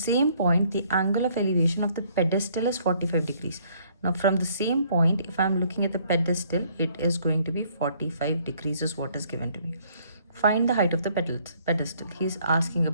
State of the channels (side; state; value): both; inverted; correlation -0.64